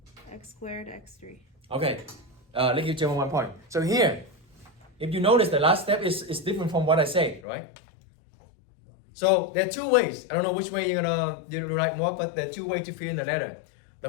squared, x3. Okay, let's give Gemma 1 point. So here, if you notice, the last step is different from what I said, right? So there are 2 ways. I don't know which way you're gonna write more, but there are 2 ways to fill in the letter. The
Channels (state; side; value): drops out; right; at 7.5 s